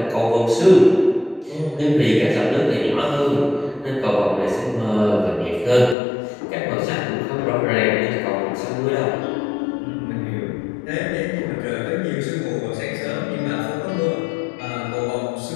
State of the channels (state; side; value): drops out; right; at 6.0 s